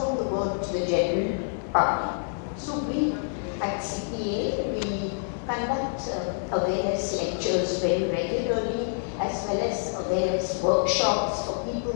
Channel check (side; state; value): right; silent; digital silence